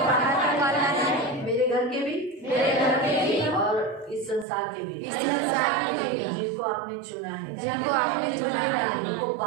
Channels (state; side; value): drops out; left; at 4.5 s